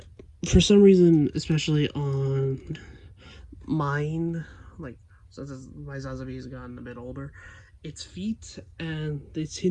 for some reason, especially on mine, like since my Sazabi has gotten a bit older, its feet and its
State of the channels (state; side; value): identical; both; correlation 1.00